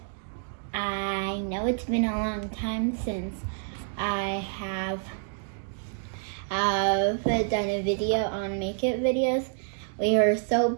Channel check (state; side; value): silent; left; 59 dB below the other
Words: I know it's been a long time since I have done a video on makeup videos. We were so